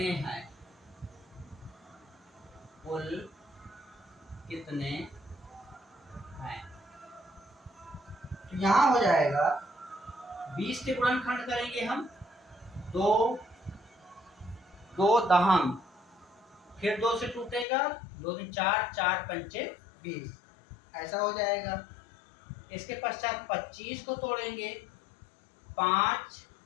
हैं? कुल कितने हैं? तो यहाँ हो जाएगा 20 के गुणनखंड करेंगे हम 2, 2 दहम, फिर 2 से टूटेगा, 2 दूनी 4, 4 पंचे 20, ऐसा हो जाएगा। इसके पश्चात 25 को तोड़ेंगे, 5,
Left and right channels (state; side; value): drops out; right; at 17.7 s